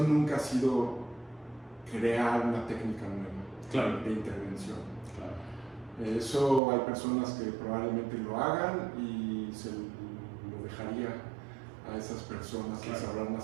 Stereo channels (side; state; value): left; drops out; at 6.6 s